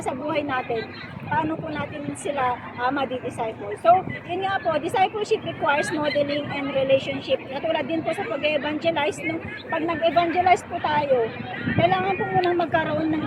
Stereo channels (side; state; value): both; identical; correlation 1.00